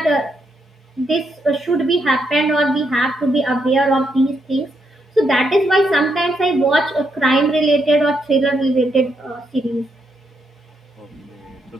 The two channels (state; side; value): normal; both; correlation 0.78